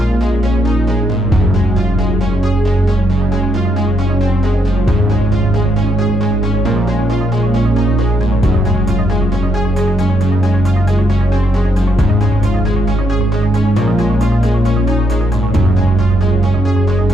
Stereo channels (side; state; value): both; normal; correlation 0.76